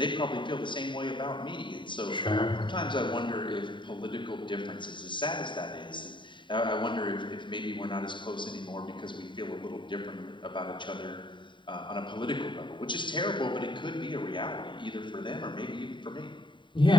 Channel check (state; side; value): late; right; 0.23 ms